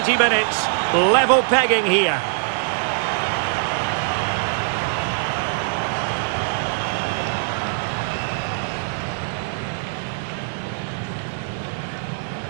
minutes. Level pegging here.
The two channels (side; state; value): left; silent; 64 dB below the other